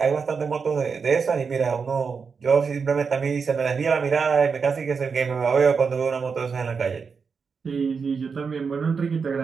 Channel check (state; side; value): quieter; left; 5.5 dB